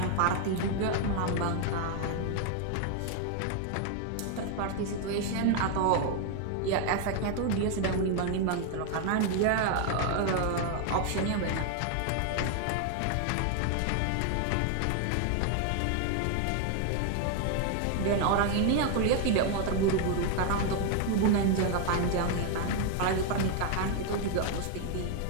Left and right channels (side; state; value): both; different; correlation 0.01